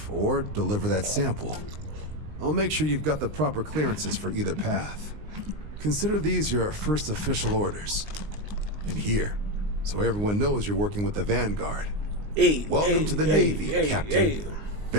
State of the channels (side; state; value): left; late; 19 ms